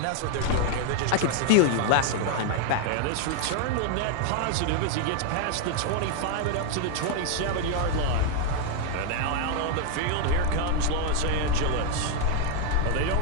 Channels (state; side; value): different; both; correlation 0.00